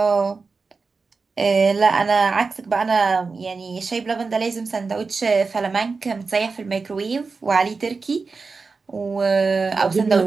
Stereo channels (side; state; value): left; quieter; 4.4 dB